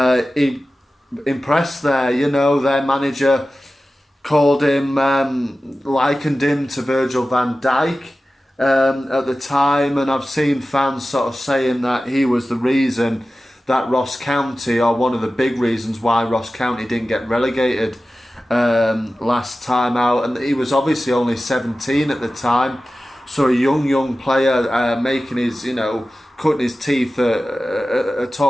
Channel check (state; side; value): normal; both; correlation 0.95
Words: he impressed there. Their manager called him, likened him to Virgil van Dijk at the time, and I've seen fans sort of saying that he was the reason that Ross County, or one of the big reasons why Ross County didn't get relegated last time out. And he was obviously only 17 at the time, So a young player making his, cutting his teeth at